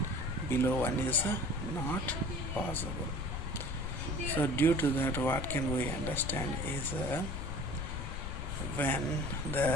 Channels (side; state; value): left; noise; rumble, 3 dB below the sound